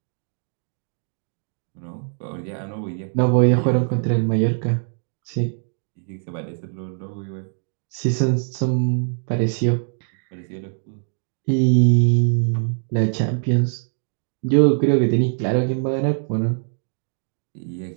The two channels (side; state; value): left; silent; digital silence